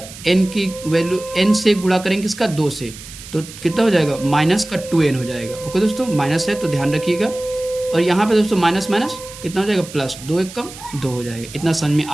n की वैल्यू n से गुणा करेंगे इसका 2 से, तो कितना हो जाएगा माइनस का 2n हो जाएगा। ओके दोस्तों, माइनस है तो ध्यान रखिएगा। और यहाँ पे दोस्तों माइनस माइनस कितना हो जाएगा प्लस, 2 एक कम 2 हो जाएगा। इतना समझ में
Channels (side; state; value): right; noise; hiss, 15 dB below the sound